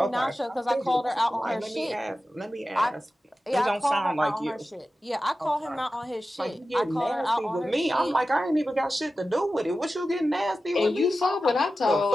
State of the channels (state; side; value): normal; both; correlation 0.94